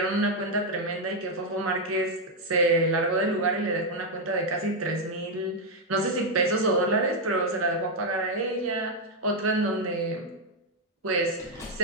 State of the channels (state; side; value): normal; both; correlation 0.02